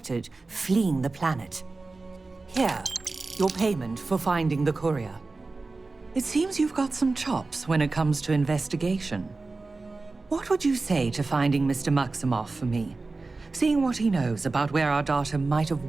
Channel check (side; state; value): left; quieter; 3.6 dB